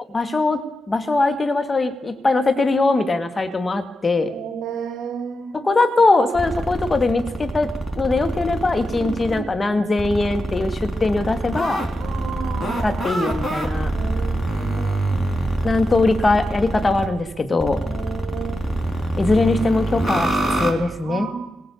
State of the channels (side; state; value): both; normal; correlation 0.89